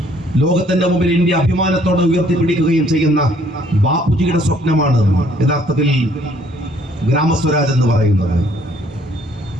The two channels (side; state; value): both; normal; correlation 0.62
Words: ലോകത്തിന്റെ മുമ്പിൽ ഇന്ത്യ അഭിമാനത്തോടെ ഉയർത്തിപ്പിടിക്കുകയും ചെയ്യുന്ന ബാപ്പുജിയുടെ സ്വപ്നമാണ് യഥാർത്ഥത്തിൽ ഗ്രാമസ്വരാജ് എന്ന് പറയുന്നത്.